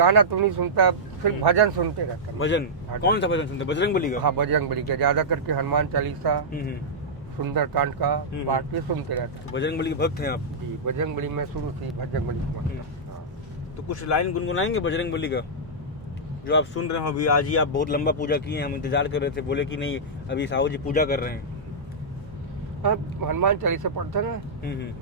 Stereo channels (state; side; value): normal; both; correlation -0.11